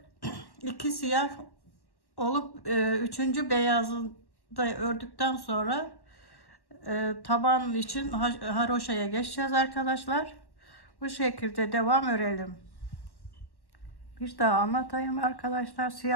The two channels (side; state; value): right; late; 1.1 ms